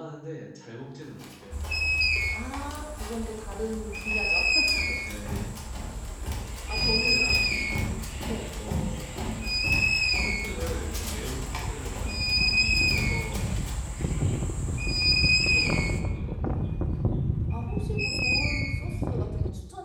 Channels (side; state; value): both; identical; correlation 1.00